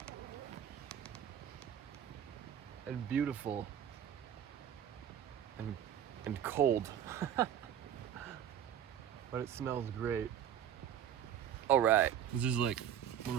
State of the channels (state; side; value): quieter; left; 9.6 dB